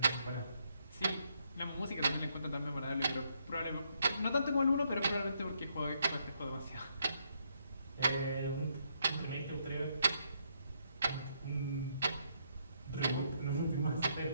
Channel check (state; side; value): inverted; both; correlation -0.75